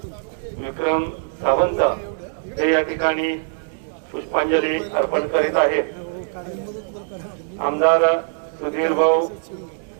विक्रम सावंत हे या ठिकाणी पुष्पांजली अर्पण करीत आहेत। आमदार सुधीर भाऊ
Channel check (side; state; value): left; silent; digital silence